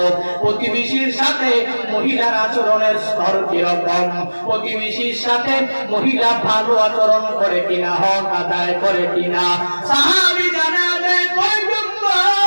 প্রতিবেশীর সাথে মহিলার আচরণের স্তর কিরকম, প্রতিবেশীর সাথে মহিলা ভালো আচরণ করে কিনা, হক আদায় করে কিনা। সাহাবী জানা দেয়, পয়গম্বর,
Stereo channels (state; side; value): inverted; both; correlation -1.00